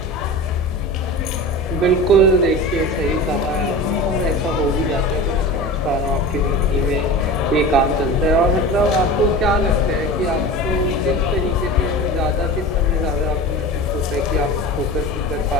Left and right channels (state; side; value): normal; both; correlation 0.32